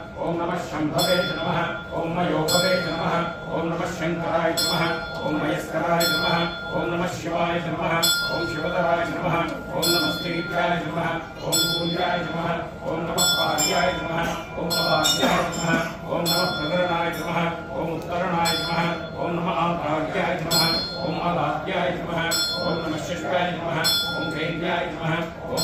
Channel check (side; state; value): both; identical; correlation 1.00